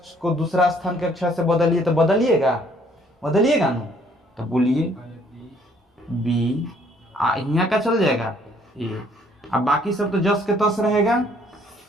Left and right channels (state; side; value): normal; both; correlation 0.63